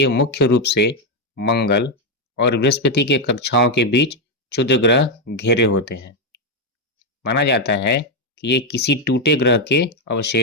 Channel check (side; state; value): both; normal; correlation 0.04